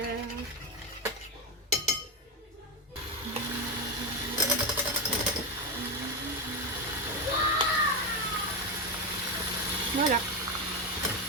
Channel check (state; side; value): normal; both; correlation 0.12